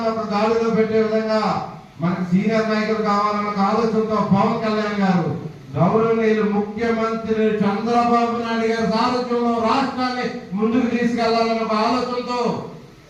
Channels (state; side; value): identical; both; correlation 1.00